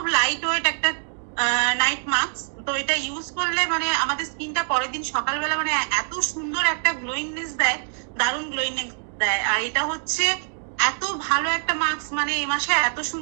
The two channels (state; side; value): silent; left; 62 dB below the other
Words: লাইট ওয়েট একটা নাইট মাস্ক। তো এটা ইউজ করলে মানে আমাদের স্কিনটা পরের দিন সকালবেলা মানে এত সুন্দর একটা গ্লোয়িংনেস দেয়, দারুণ গ্লোয়িংনেস দেয়। আর এটা হচ্ছে এত ভালো একটা মাস্ক, মানে এই মাসে এত